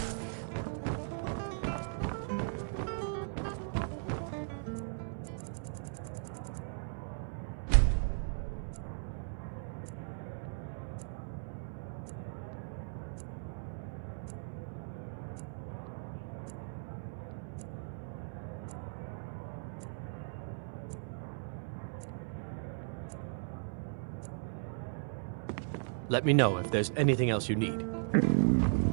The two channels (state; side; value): silent; left; 53 dB below the other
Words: Let me know if there's anything else you need.